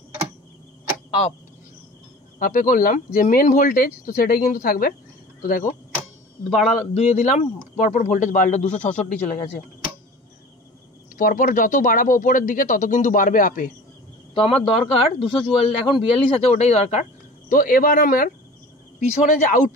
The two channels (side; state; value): both; normal; correlation 0.40